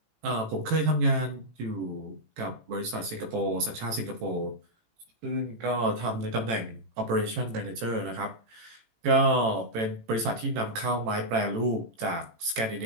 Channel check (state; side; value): late; left; 18 ms